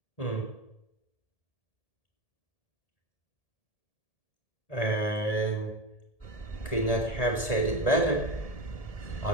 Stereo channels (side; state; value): right; late; 1.7 ms